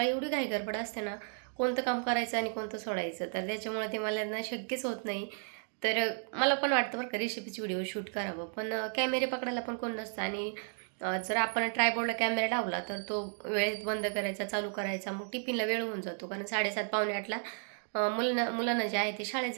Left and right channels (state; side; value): silent; left; 55 dB below the other